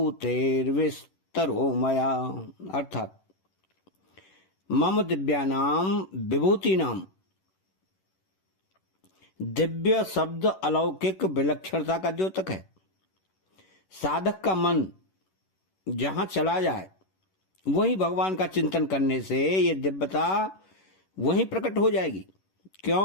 मया। अर्थात मम दिव्यानां विभूतीनां, दिव्य शब्द अलौकिक विलक्षणता का द्योतक है। साधक का मन जहां चला जाए वहीं भगवान का चिंतन करने से ये दिव्यता वहीं प्रकट हो जाएगी,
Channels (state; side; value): late; right; 11 ms